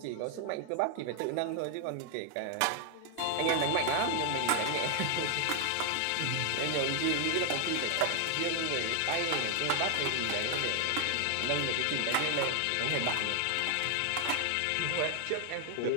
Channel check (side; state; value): both; different; correlation 0.00